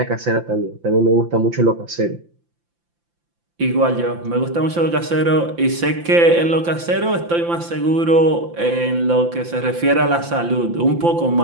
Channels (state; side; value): late; left; 5.8 ms